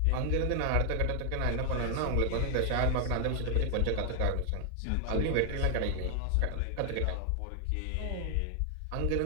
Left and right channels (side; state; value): both; different; correlation 0.00